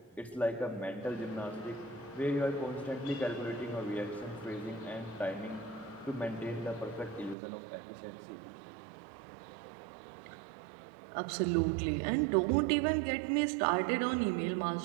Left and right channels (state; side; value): drops out; left; at 7.4 s